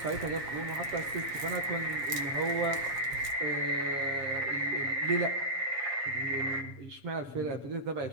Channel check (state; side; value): late; left; 7.3 ms